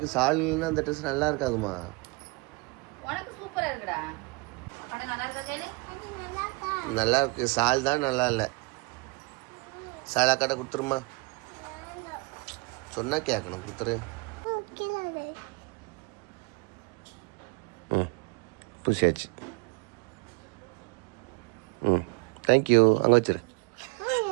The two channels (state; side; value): quieter; left; 27.4 dB